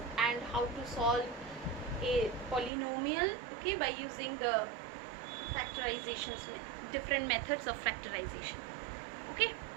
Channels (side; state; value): left; drops out; at 2.7 s